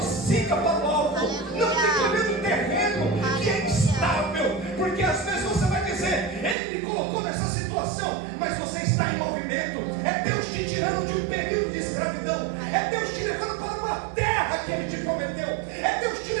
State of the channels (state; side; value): drops out; left; at 6.6 s